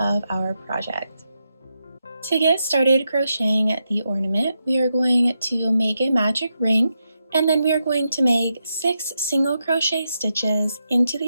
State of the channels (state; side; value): inverted; both; correlation -0.85